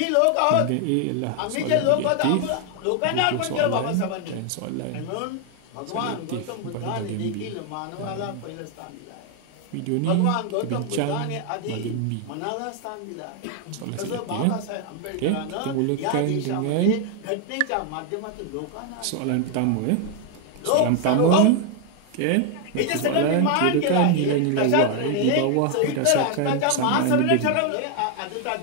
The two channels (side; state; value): both; different; correlation 0.01